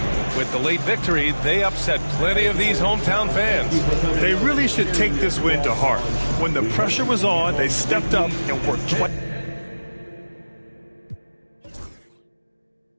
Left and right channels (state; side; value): inverted; both; correlation -1.00